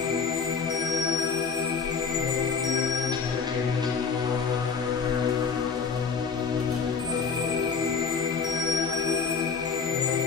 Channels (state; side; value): quieter; right; 5.7 dB